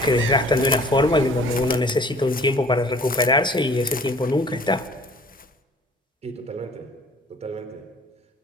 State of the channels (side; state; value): both; normal; correlation 0.51